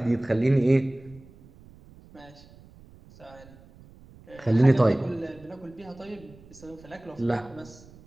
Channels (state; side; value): noise; right; rumble, 23 dB below the sound